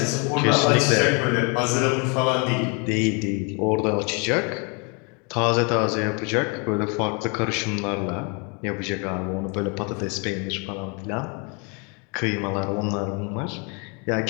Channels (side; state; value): right; quieter; 33.5 dB